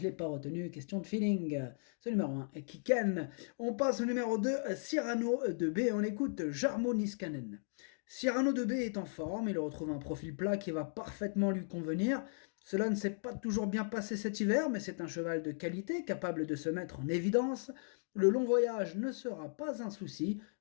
l'ai pas retenu, question de feeling. Ce numéro 1, Kiken. On passe au numéro 2, Cyrano de B. On écoute Jarmo Niskanen. Cyrano de B est en forme, il retrouve un profil plat qui va parfaitement lui convenir. Cela ne s'est pas toujours bien passé cet hiver, mais c'est un cheval de qualité, capable de se mettre en évidence. Le long voyage ne sera pas un souci,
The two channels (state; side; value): silent; right; digital silence